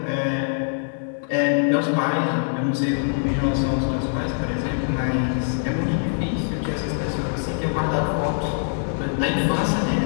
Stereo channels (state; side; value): silent; right; digital silence